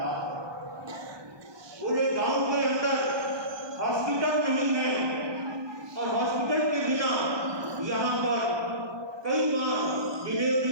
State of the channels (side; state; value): left; late; 1.2 ms